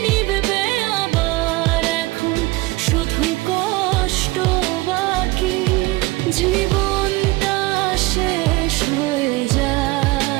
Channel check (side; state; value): left; quieter; 21.4 dB